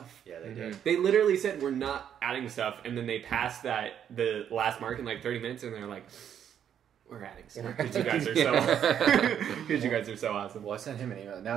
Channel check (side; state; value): left; quieter; 9.1 dB